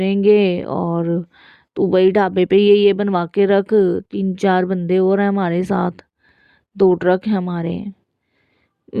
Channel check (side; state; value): both; identical; correlation 1.00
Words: और तू वही ढाबे पे ये बनवा के रख, 3-4 बंदे और हैं हमारे साथ, 2 ट्रक हैं हमारे।